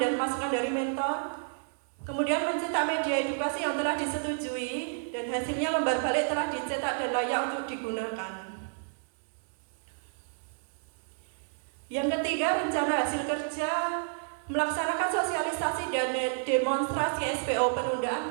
masukan dari mentor. Kemudian mencetak media edukasi yang telah disetujui dan hasilnya lembar balik telah dicetak dan layak untuk digunakan. Yang ketiga rencana hasil kerja melaksanakan sosialisasi dan demonstrasi SPO penundaan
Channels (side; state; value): left; silent; 58 dB below the other